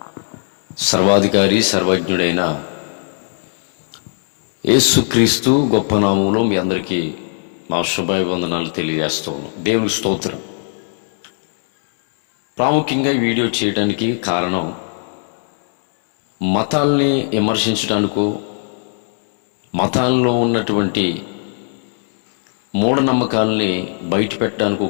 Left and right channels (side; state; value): right; silent; 67 dB below the other